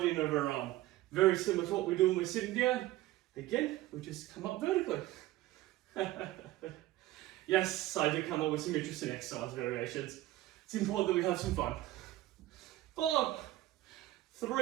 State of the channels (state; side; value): quieter; left; 16.0 dB